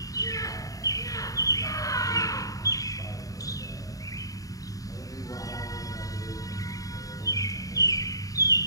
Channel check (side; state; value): right; late; 0.17 ms